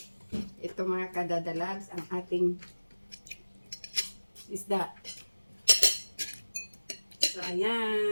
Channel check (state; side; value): inverted; both; correlation -1.00